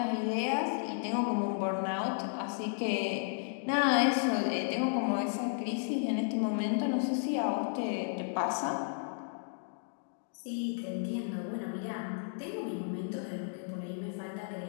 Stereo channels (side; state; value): right; silent; digital silence